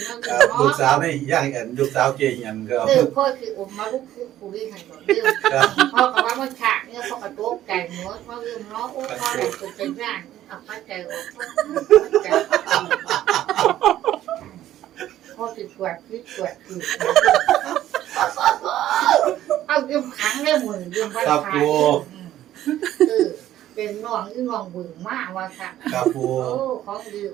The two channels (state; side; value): quieter; left; 12.9 dB